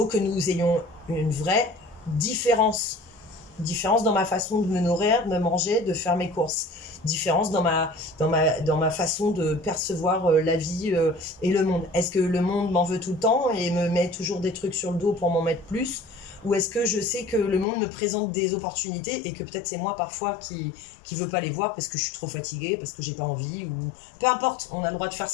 que nous ayons une vraie différence dans ma façon de me nourrir, de me manger, de faire mes courses. Différence dans ma façon de percevoir la vie et le monde. Est-ce que le monde m'en veut tout le temps et me met toujours des trucs sur le dos pour m'en mettre plus? Ou est-ce que je sais que le monde me présente des opportunités et que peut-être c'est moi parfois qui veut pas les voir parce que je suis trop fatiguée, parce que j'ai pas envie, ou peu importe, on a le droit de faire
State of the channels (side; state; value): right; drops out; at 17.7 s